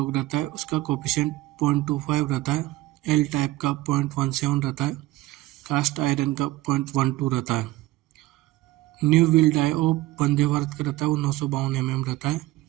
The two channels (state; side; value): quieter; left; 17.8 dB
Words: रहता है उसका कोफिशिएंट 0.25 रहता है। L टाइप का 0.17 रहता है। कास्ट आयरन का 0.12 रहता है। New wheel die of Vande Bharat का रहता है वो 952 mm रहता है।